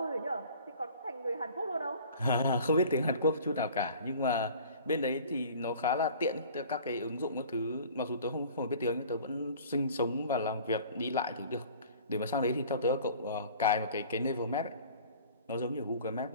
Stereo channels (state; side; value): inverted; both; correlation -0.46